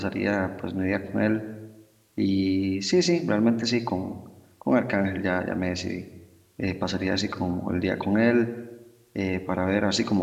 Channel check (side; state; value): both; identical; correlation 1.00